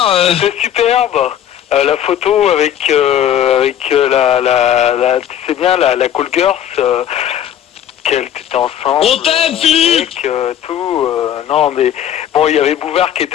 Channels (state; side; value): quieter; right; 10.4 dB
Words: C'était superbe. La photo avec la tu sais bien la Cool Girls qu'elle était ensemble. On t'aime, Philippe. Tout. Non mais bon, il y avait Bouvard qui